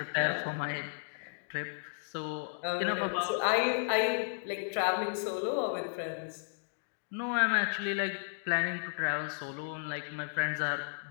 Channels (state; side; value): silent; right; digital silence